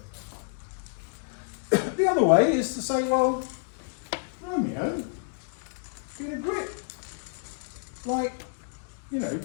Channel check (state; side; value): silent; right; digital silence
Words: it. The other way is to say, well, Romeo, been a grip. Like, you know,